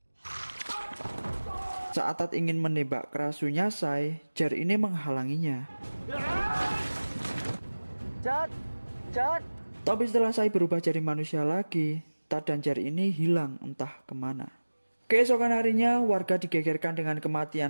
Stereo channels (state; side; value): inverted; both; correlation -1.00